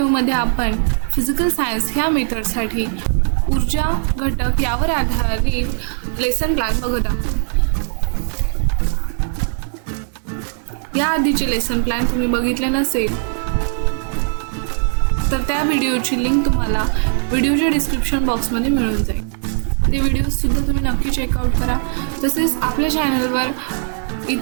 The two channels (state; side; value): silent; left; 57 dB below the other